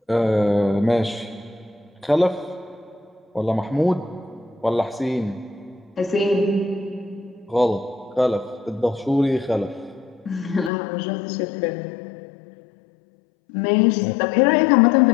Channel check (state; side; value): drops out; right; at 10.7 s